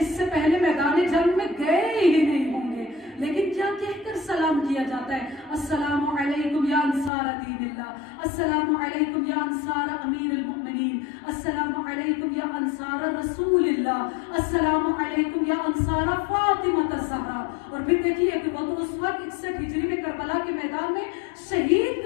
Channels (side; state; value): right; drops out; at 7.1 s